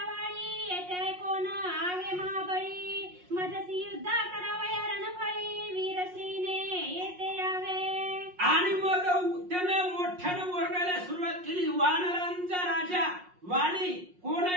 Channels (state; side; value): late; left; 5.5 ms